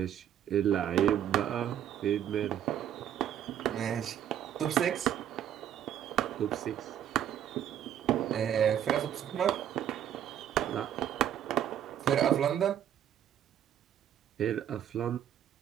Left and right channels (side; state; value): left; quieter; 10.2 dB